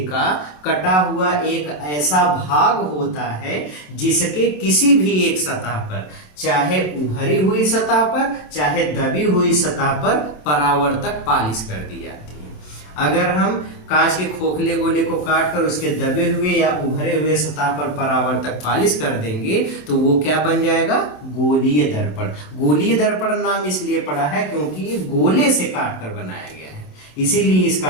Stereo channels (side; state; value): right; late; 27 ms